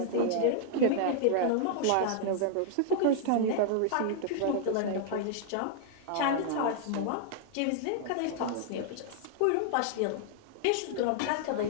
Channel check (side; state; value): both; different; correlation -0.01